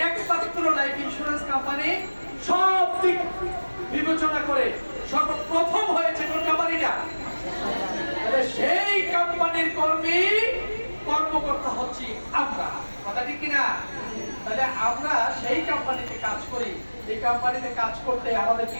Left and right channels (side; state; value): both; inverted; correlation -1.00